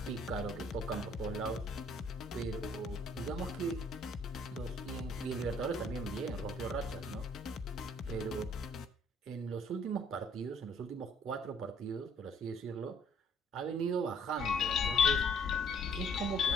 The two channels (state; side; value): normal; both; correlation 0.62